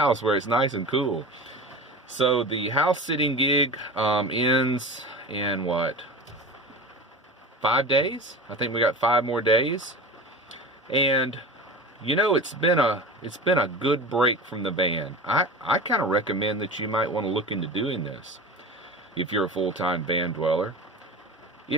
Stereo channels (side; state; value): both; normal; correlation 0.31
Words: where it's nice and cool. So the house sitting gig ends in 5 days? I think we got 5 more days. And it's been a good break from the van. I kind of recommend that you might want to look into doing this if you're a full-time van dweller.